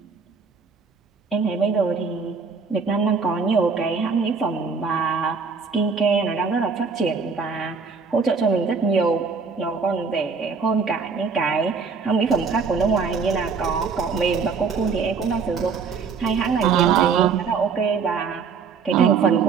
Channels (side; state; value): left; quieter; 5.3 dB